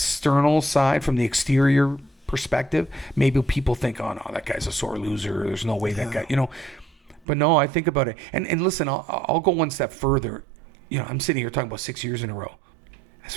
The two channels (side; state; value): left; drops out; at 7.2 s